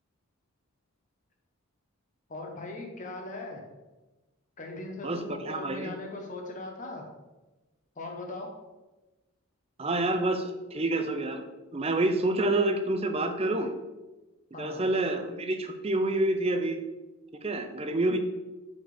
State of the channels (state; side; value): normal; both; correlation 0.39